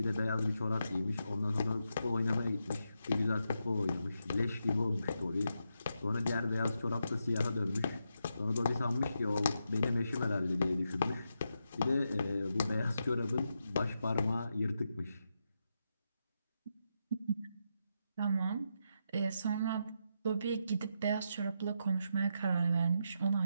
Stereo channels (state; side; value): inverted; both; correlation -0.84